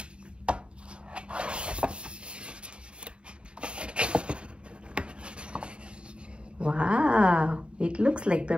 Wow, it looks like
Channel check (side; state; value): left; late; 0.055 ms